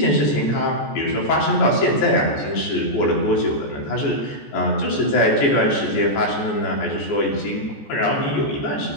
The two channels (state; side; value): late; right; 14 ms